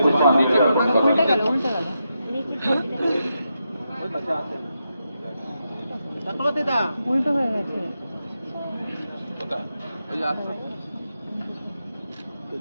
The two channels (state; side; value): inverted; both; correlation -0.86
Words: পুষ্পাঞ্জলি জ্ঞাপন করবার উল্টে জন্য। গেল উল্টে গেল উল্টো হয়ে গেছে